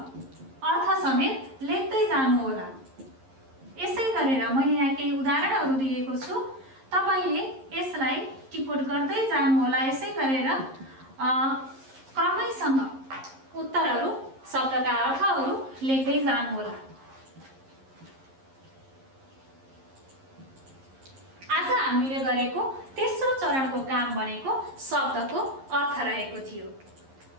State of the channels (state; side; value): late; left; 11 ms